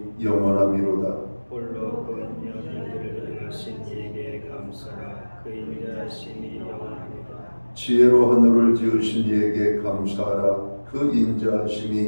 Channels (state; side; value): inverted; both; correlation -1.00